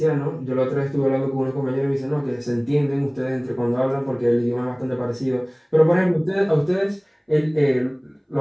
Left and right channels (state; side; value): identical; both; correlation 1.00